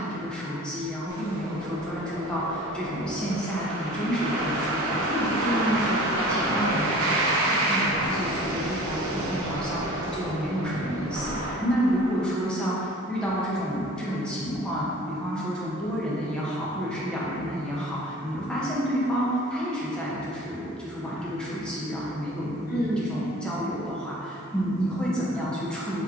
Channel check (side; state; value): both; normal; correlation 0.45